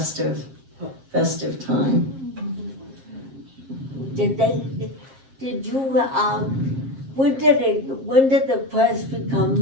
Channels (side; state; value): left; late; 7.5 ms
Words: time. Did you, when did the press become